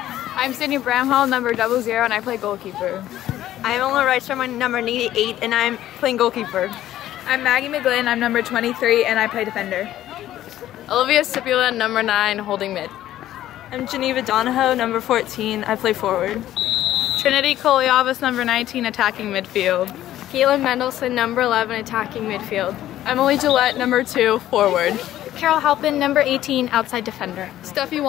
Sydney Bramhall, number 00 and I play goalkeeper. I'm Ola Reichstrom, I'm number 88 and I'm playing goalkeeper. I'm Maggie McGlynn, I'm number 23 and I play defender. Olivia Stipula, number 9, holding mid. I'm Geneva Donahoe, number 14, I play forward. Trinity Koliavas, number 19, attacking midfield. Caitlin Mendelson, number 11, attacking midfield. Emily Gillette, number 2, forward. Carol Halpin, number 18, outside defender. Steffi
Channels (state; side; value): quieter; right; 13.2 dB